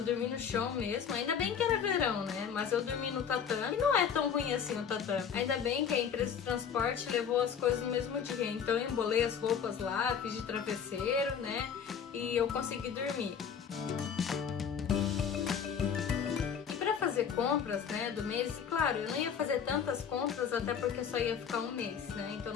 dormi no chão mesmo. Ainda bem que era verão, né? Mas eu dormi no tatame. E não é tão ruim assim o tatame. Ainda bem que a empresa de transporte levou as coisas no mesmo dia. Então, eu embolei as roupas lá, fiz de travesseiro, né? E eu consegui dormir. Fazer compras, né, do mês, e claro, eu não ia fazer tantas compras até porque eu só ia ficar 1 mês, né, então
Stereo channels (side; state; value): right; quieter; 7.4 dB